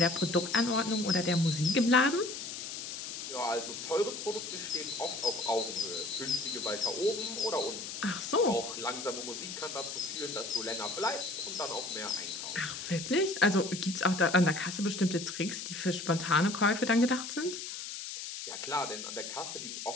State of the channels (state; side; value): noise; left; hiss, 7 dB below the sound